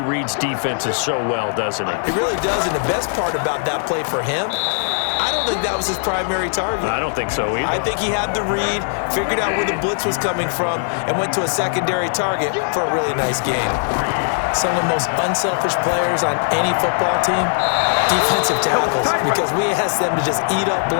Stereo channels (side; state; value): right; silent; 61 dB below the other